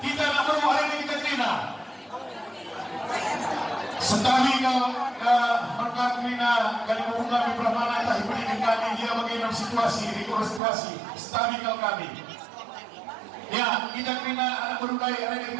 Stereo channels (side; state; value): left; drops out; at 10.6 s